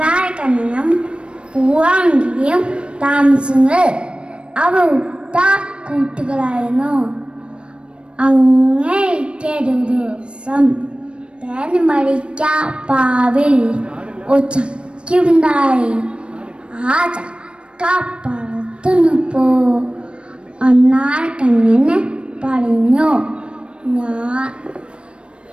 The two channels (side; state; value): left; late; 0.058 ms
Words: പൂവാങ്കിരിയും താമസിച്ചത് അവർ ഉറ്റ കൂട്ടുകളായിരുന്നു. അങ്ങേക്ക് ഒരു ദിവസം തേൻ മരിച്ച പാവിൽ ഒരു ചക്കയുണ്ടായി. ആ ചക്ക പറത്തുന്നപ്പോ അണ്ണാരക്കണ്ണന് പറഞ്ഞു,